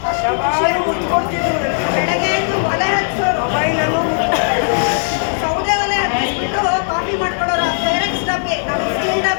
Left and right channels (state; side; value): silent; right; digital silence